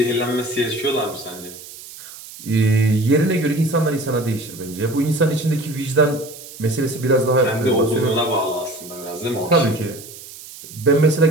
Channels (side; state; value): right; noise; hiss, 16 dB below the sound